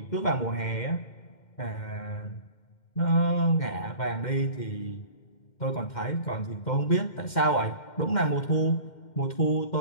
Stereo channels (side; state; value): right; late; 2.1 ms